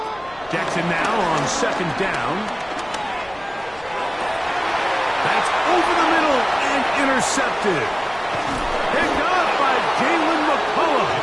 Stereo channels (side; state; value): left; noise; rumble, 24 dB below the sound